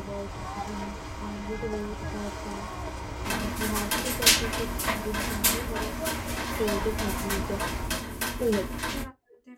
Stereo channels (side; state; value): both; identical; correlation 1.00